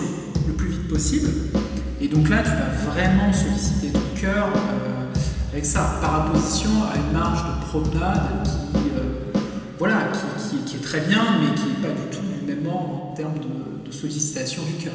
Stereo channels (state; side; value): identical; both; correlation 1.00